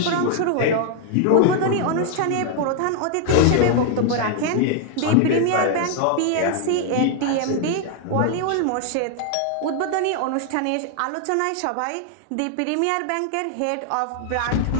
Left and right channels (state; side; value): different; both; correlation 0.00